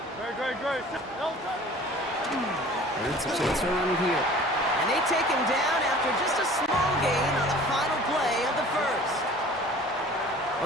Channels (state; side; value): normal; both; correlation 0.46